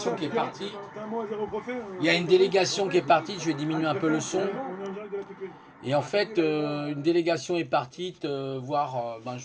qui est partie. Il y a une délégation qui est partie, je vais diminuer un peu le son. Et en fait, une délégation est partie voir,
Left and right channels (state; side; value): identical; both; correlation 1.00